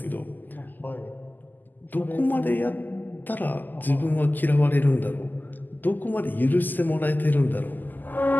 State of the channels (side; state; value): right; late; 0.086 ms